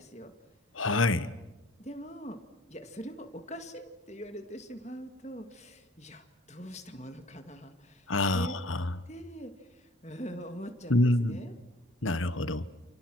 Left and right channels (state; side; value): normal; both; correlation 0.54